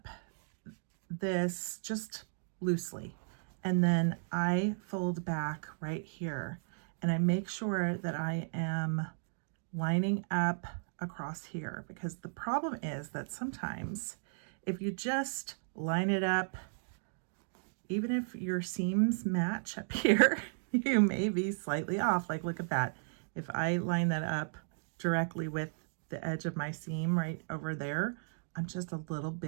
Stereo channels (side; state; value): left; silent; digital silence